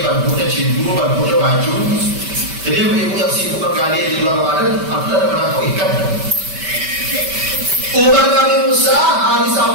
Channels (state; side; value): late; left; 5.1 ms